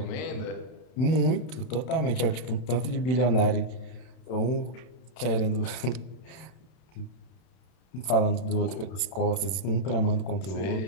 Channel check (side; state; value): right; late; 31 ms